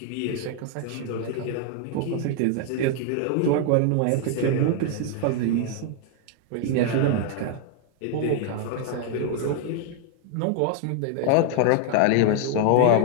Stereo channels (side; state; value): both; different; correlation 0.00